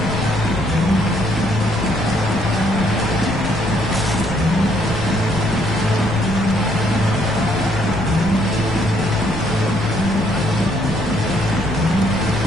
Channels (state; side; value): noise; left; rumble, 10 dB below the sound